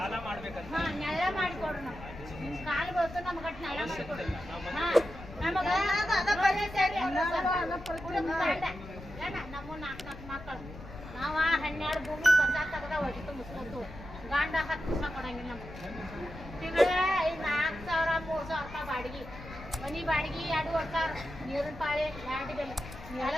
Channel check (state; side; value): noise; left; rumble, 14 dB below the sound